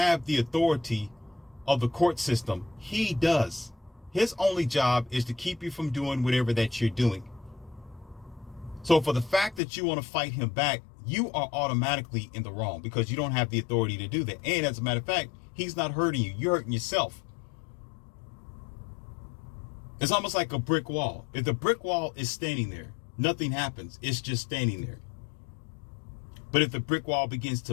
the authority of the court system, he does. His only job is to keep you from doing whatever that you're doing. So for the fact that you want to fight him back, you are automatically in the wrong, because you don't have the authority to do that. And as a matter of fact, he's not hurting you. You're hurting yourself. It's almost like a brick wall. If the brick wall is standing there, nothing happens. It's just standing there. But if the brick wall begins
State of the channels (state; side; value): drops out; right; at 9.6 s